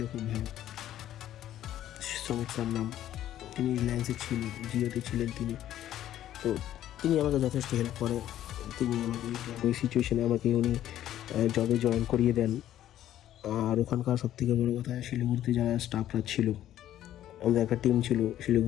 খুব ভালো, শ্রমিক স্যার নাম। তিনি রিলায়েন্সে ছিলেন, জিওতে ছিলেন তিনি। তো তিনি আমাকে যথেষ্ট হেল্প করে। তিনি আমাকে ওই সিচুয়েশানে আমাকে উনি জবে জয়েন করিয়ে দেন। আর ওখানকার সবথেকে বড়ো কথা, শিলিগুড়িতে যারা স্টাফরা ছিল, আমাদের একটা টিম ছিল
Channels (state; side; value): quieter; right; 12.3 dB